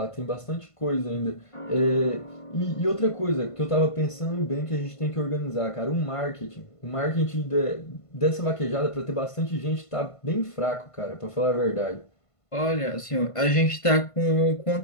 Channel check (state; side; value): late; right; 1.5 ms